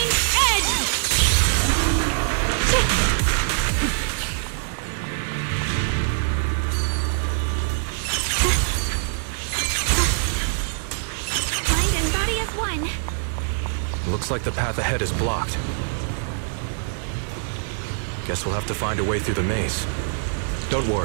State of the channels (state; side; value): silent; left; 63 dB below the other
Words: Edge! Mind and body as one. Looks like the path ahead is blocked. Guess we'll have to find a way through the maze. Don't